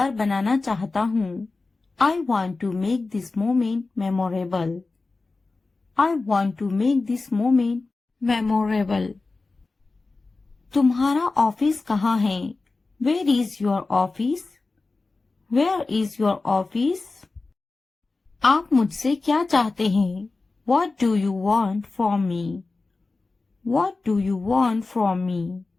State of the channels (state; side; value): quieter; right; 3.6 dB